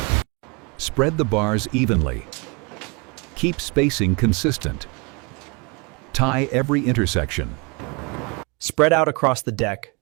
Spread the bars evenly. Keep spacing consistent. Tie every intersection. Spread out across the deck,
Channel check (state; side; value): quieter; left; 30.3 dB